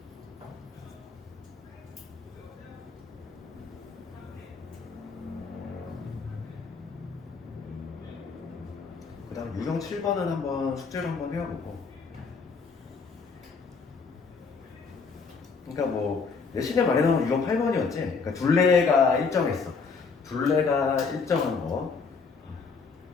그 다음 유형 7번은 한번 숙제를 한번 해보고, 그러니까 뭐 내신에 말해놓은 유형 8번이었지. 그러니까 둘레가 일정했어. 둘레가 일정한 거.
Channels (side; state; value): right; quieter; 4.9 dB